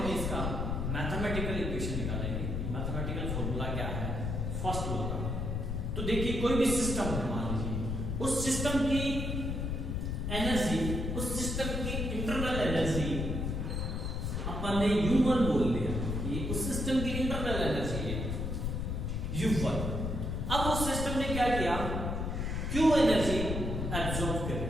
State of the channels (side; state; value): left; noise; rumble, 2 dB below the sound